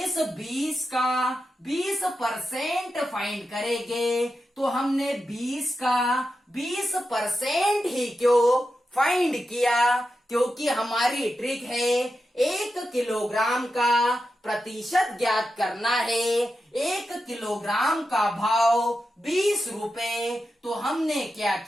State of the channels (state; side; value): normal; both; correlation 0.89